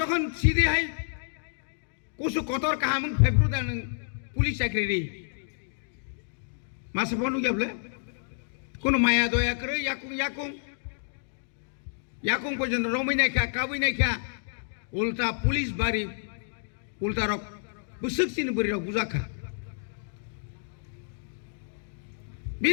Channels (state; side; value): silent; right; digital silence